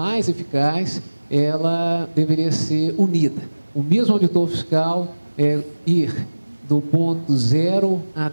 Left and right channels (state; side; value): inverted; both; correlation -1.00